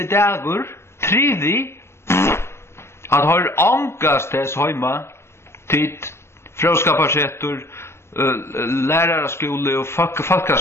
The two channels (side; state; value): right; late; 0.13 ms